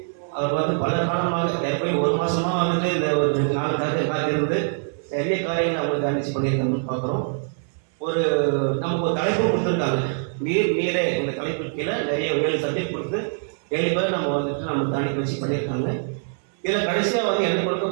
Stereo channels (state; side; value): silent; left; 63 dB below the other